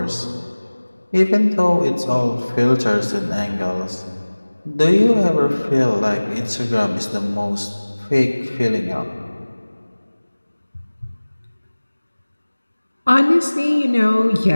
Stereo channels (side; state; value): both; inverted; correlation -1.00